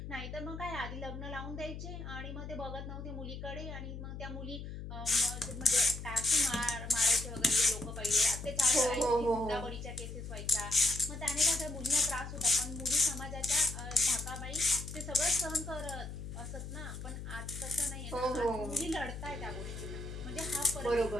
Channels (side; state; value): left; noise; hum, 8 dB below the sound